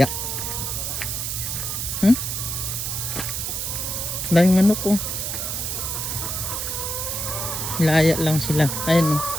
Dahil manok oh. Laya lang sila. Ayun oh.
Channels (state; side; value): noise; right; hiss, 2 dB below the sound